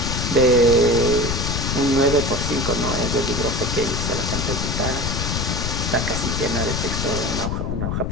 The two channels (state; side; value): noise; left; rumble, 1 dB below the sound